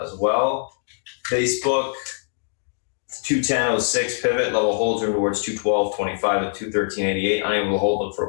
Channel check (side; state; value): right; silent; digital silence